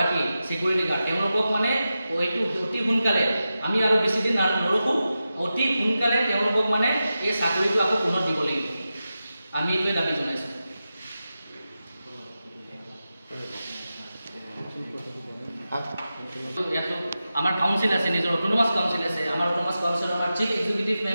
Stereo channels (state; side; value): inverted; both; correlation -0.92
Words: চিকিউৰিটি গাৰ্ড তেওঁলোকক মানে এইটো অতি সোনকালে আমি আৰু বেছি দিন নৰখোঁ, অতি সোনকালে তেওঁলোকক মানে এই চাকৰিটো আকৌ পুনৰ দিব লাগিব। আমি এইটোৱে দাবী জনাইছোঁ। আমাৰ কাউন্সিল আছে, নিজৰ অট'নমাছ কাউন্সিল আছে। আমাৰ অট'নমাছ কাউন্সিলৰ আমাৰ chief executive